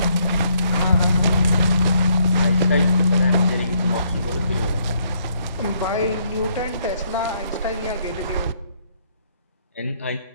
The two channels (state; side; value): inverted; both; correlation -0.70